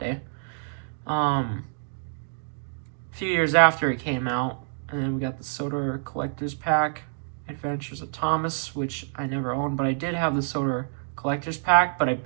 A few years after it came out. And then we got the Soda Collector's Pack, Adventures of Thomas, which I never owned, but I did have the Soda Collector's Pack, but I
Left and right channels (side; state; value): left; silent; digital silence